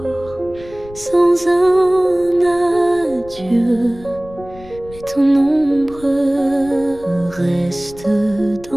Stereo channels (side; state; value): left; noise; rumble, 19 dB below the sound